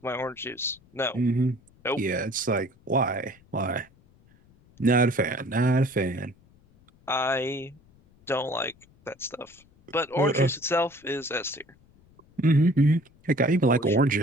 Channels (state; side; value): noise; left; rumble, 29 dB below the sound